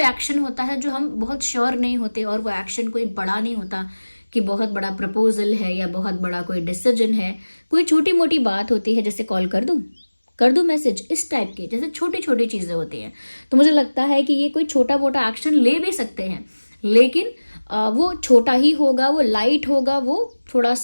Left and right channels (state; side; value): inverted; both; correlation -1.00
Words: एक्शन होता है जो हम बहुत श्योर नहीं होते, और वो एक्शन कोई बड़ा नहीं होता कि बहुत बड़ा प्रपोजल है या बहुत बड़ा कोई डिसीजन है, कोई छोटी मोटी बात होती है, जैसे कॉल कर दूं मैसेज, इस टाइप के जैसे छोटी छोटी चीज़ें होती हैं. तो मुझे लगता है कि ये कोई छोटा मोटा एक्शन ले भी सकते हैं, लेकिन वो छोटा ही होगा, वो लाइट होगा, वो थोड़ा